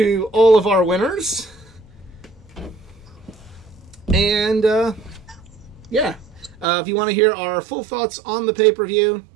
all of our winners. And, yeah. If you want to hear our full thoughts on the pay-per-view,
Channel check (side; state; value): left; drops out; at 6.7 s